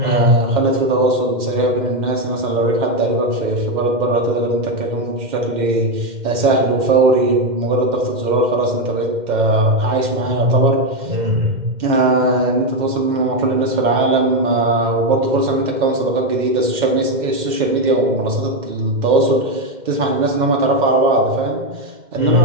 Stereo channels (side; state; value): left; late; 2.1 ms